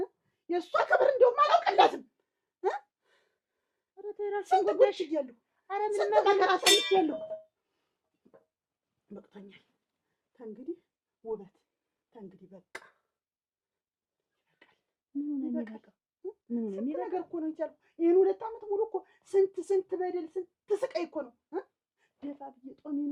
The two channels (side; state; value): both; identical; correlation 1.00